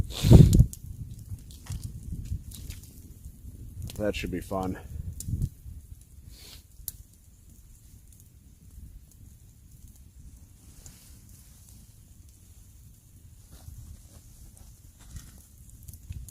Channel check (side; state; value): both; identical; correlation 1.00